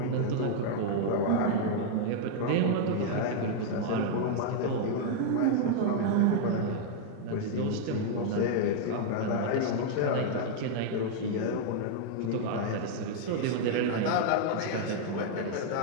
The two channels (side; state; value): both; different; correlation -0.01